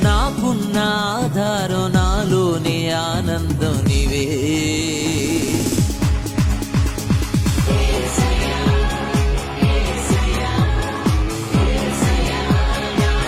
నాకున్న ఆధారం నాలోనే ఆనందం నీవే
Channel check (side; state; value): both; identical; correlation 1.00